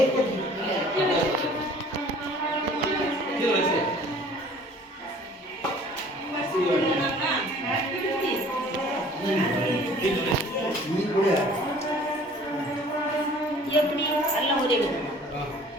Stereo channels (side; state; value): both; normal; correlation 0.51